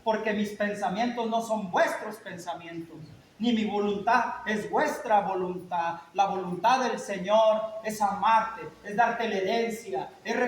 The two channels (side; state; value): both; identical; correlation 1.00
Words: porque mis pensamientos no son vuestros pensamientos, ni mi voluntad es vuestra voluntad. La voluntad del Señor es amarte, es darte la herencia, es